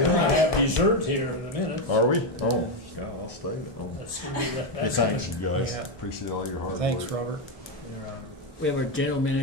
have dessert here in a minute. Are we? Oh, yeah, I'll stay. Oh. That's gonna be that- Hey, thanks, you guys. Yeah. Appreciate all your hard Thanks, work. Robert. We have our general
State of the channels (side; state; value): both; normal; correlation 0.07